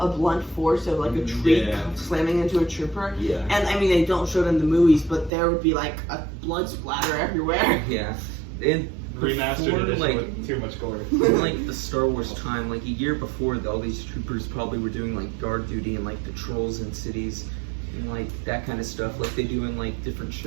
blunt force of like a tree Yeah. slamming into a trooper. Yeah. And I mean, they don't show it in the movies, but there would be like a blood splatter everywhere. Yeah. And Remastered before, edition like, with too much gore. in like the Star Wars time, like a year before, all these troopers probably were doing like guard duty and like patrols in cities and like that kind of stuff, like they do in like different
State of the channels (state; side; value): drops out; left; at 5.3 s